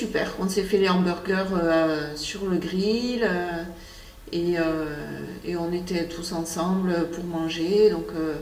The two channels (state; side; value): identical; both; correlation 1.00